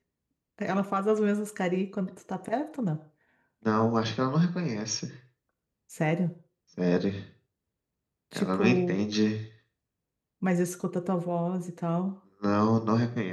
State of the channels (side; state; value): both; identical; correlation 1.00